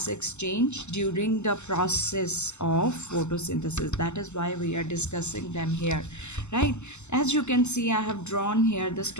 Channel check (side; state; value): right; late; 0.83 ms